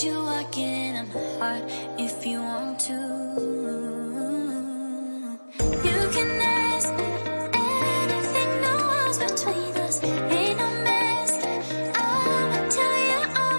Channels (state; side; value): inverted; both; correlation -1.00